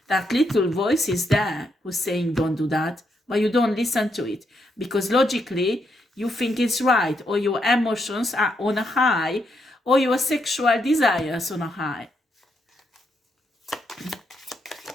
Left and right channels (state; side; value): normal; both; correlation 0.79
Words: that little voice is there who's saying don't do that, but you don't listen to it. Because logically, you think it's right, or your emotions are on a high, or your sexual desires on a high.